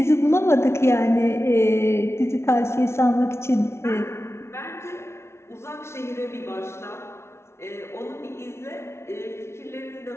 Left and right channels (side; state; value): right; late; 0.13 ms